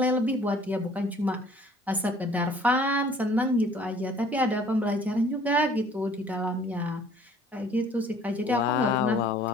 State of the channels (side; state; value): both; normal; correlation 0.54